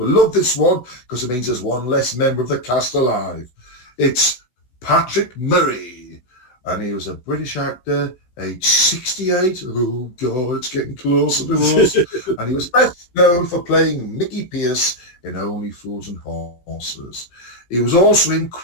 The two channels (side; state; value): right; late; 16 ms